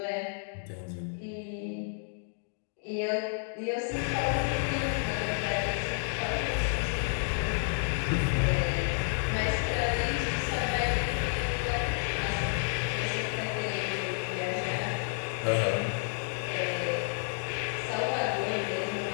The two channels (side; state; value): right; silent; 57 dB below the other